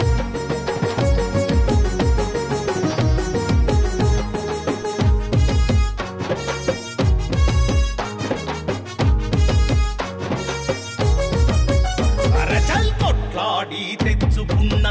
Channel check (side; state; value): both; identical; correlation 1.00